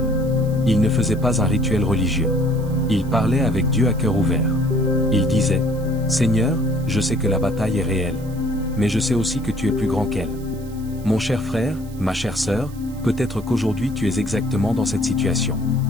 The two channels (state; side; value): noise; right; hiss, 23 dB below the sound